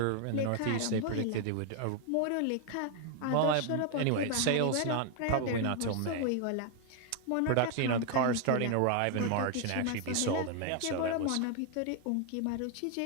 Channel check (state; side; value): different; both; correlation 0.01